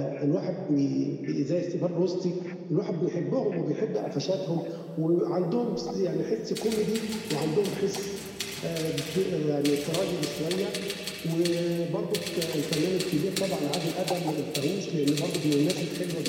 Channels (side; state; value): both; identical; correlation 1.00